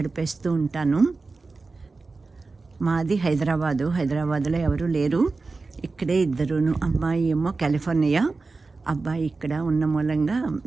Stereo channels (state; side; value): quieter; left; 3.9 dB